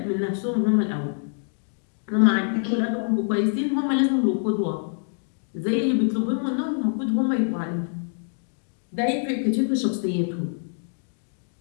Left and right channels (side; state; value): right; silent; 60 dB below the other